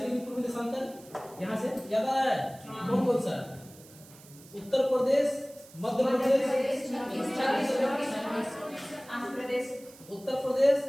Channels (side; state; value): right; noise; hiss, 22 dB below the sound